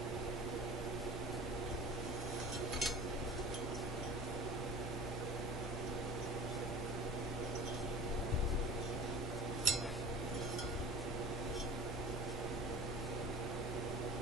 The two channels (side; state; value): both; normal; correlation 0.38